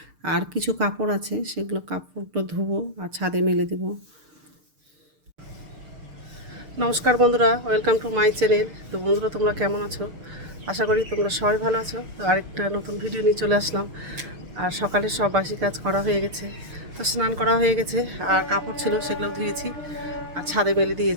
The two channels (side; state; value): left; late; 6.7 ms